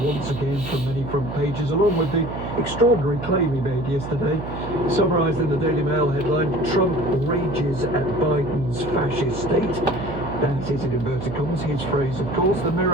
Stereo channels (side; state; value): right; noise; hum, 8 dB below the sound